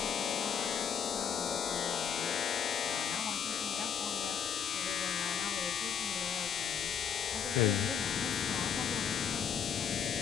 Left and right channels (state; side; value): quieter; right; 7.8 dB